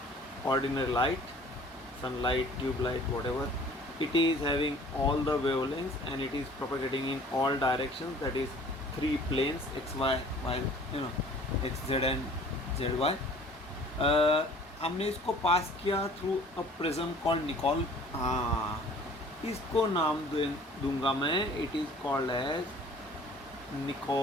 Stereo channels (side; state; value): both; normal; correlation 0.51